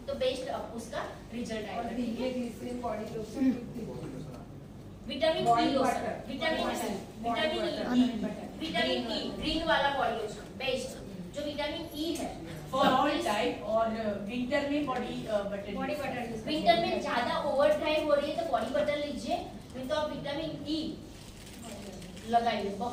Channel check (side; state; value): both; identical; correlation 1.00